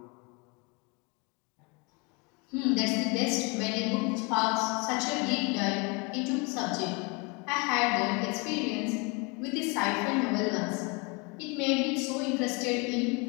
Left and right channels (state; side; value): quieter; right; 30.1 dB